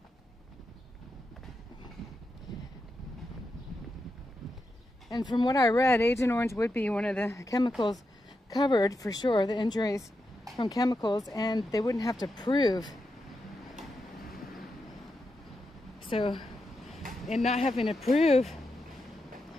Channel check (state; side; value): normal; both; correlation 0.86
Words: And from what I read, Agent Orange would be one of the chemicals covered for sure, the injuries from chemicals, and they wouldn't have to prove. So, in not having to prove